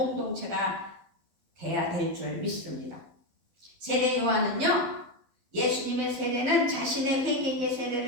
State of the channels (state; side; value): late; left; 12 ms